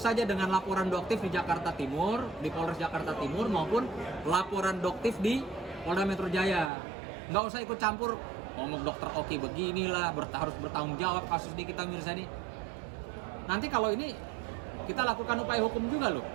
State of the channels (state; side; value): drops out; left; at 6.7 s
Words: saja dengan laporan Doktif di Jakarta Timur, di Polres Jakarta Timur, maupun laporan Doktif di Polda Metro Jaya. Nggak usah ikut campur ngomong Dr. Oki beginilah, harus bertanggung jawab kasus Nikita Mirzani. Nanti kalau ini kita lakukan upaya hukum juga loh.